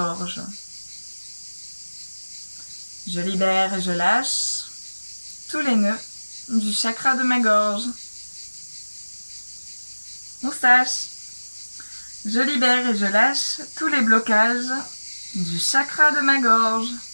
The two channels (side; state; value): both; inverted; correlation -1.00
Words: Je libère et je lâche tous les nœuds du chakra de ma gorge. Moustache. Je libère et je lâche tous les blocages du chakra de ma gorge.